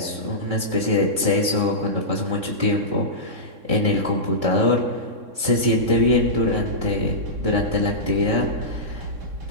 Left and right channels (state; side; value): late; left; 3.6 ms